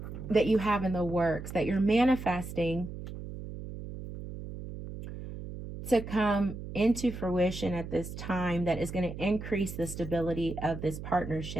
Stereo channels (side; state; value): right; noise; hum, 10 dB below the sound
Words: that you have in the works, that you're manifesting to come into fruition at this time, that is going to increase the stability of this